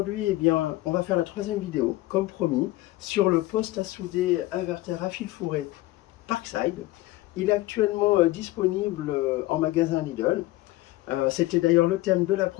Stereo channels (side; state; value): right; quieter; 18.1 dB